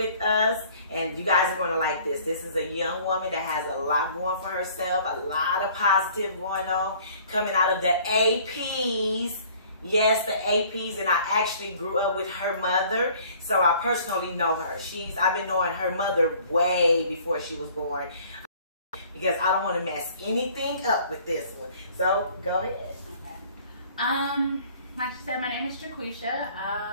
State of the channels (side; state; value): both; inverted; correlation -0.54